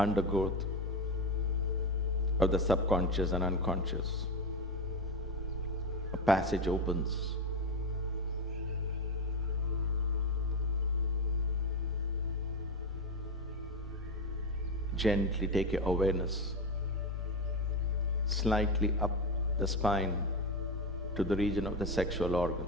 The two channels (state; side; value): normal; both; correlation 0.16